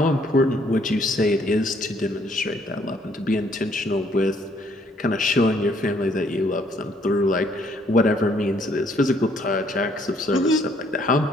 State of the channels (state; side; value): normal; both; correlation 0.66